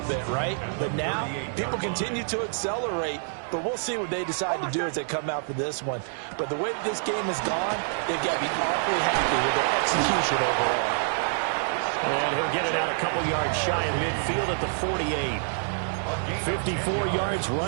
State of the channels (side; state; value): left; silent; 60 dB below the other